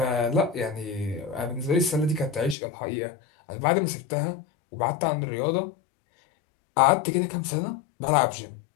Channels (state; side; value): drops out; right; at 2.6 s